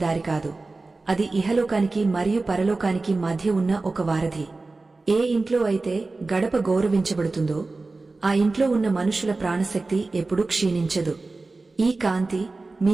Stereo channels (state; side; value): quieter; left; 3.5 dB